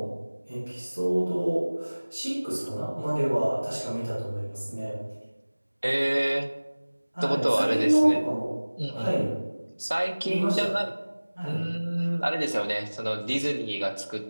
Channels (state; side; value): inverted; both; correlation -1.00